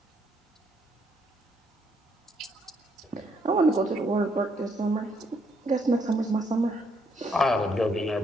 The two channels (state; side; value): normal; both; correlation 0.72